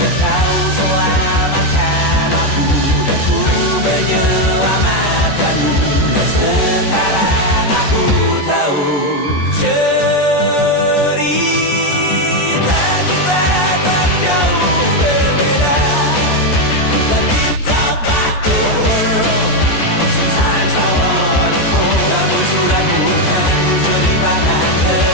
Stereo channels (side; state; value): right; late; 14 ms